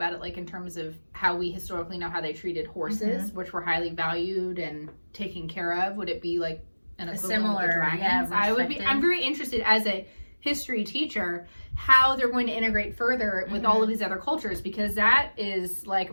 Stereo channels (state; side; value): inverted; both; correlation -1.00